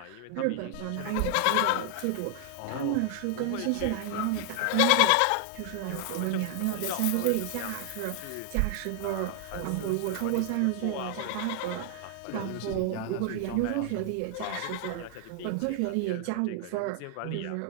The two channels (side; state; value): both; different; correlation 0.00